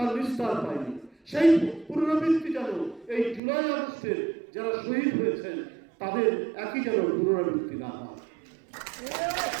নিস্তার পায়নি। সেই পুনরাবৃত্তি যেন এই জুলাই আগস্টের যারা শহীদ হয়েছেন তাদের একই যেন পুনরাবৃত্তি না হয়।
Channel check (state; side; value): drops out; left; at 3.4 s